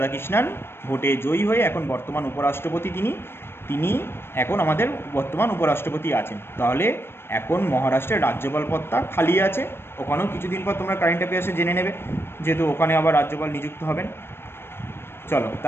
ভোটে জয়ী হয়ে এখন বর্তমান উপরাষ্ট্রপতি তিনি এখন আমাদের বর্তমান উপরাষ্ট্রপতি আছেন। তাহলে এখন মহারাষ্ট্রের রাজ্যপাল পদটা খালি আছে, ওখানেও কিছুদিন পর তোমরা কারেন্ট অ্যাফেয়ার্সে জেনে নেবে, যেহেতু ওখানে আবার রাজ্যপাল নিযুক্ত হবেন। চলো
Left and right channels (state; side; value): late; right; 0.11 ms